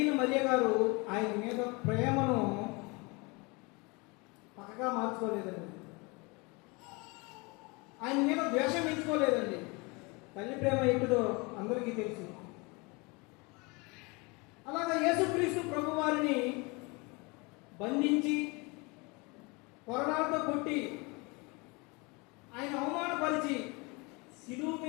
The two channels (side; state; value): right; quieter; 27.7 dB